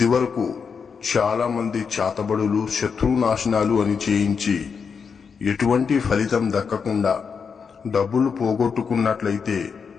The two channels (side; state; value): right; quieter; 6.0 dB